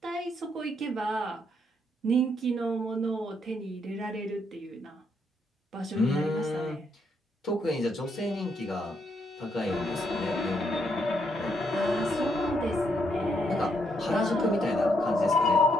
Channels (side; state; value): both; normal; correlation 0.75